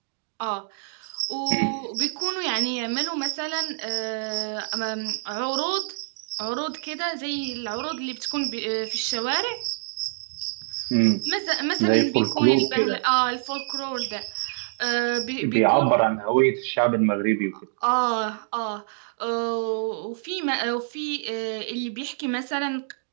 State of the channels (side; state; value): left; silent; digital silence